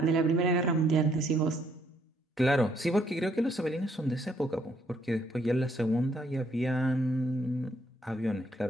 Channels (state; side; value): normal; both; correlation 0.69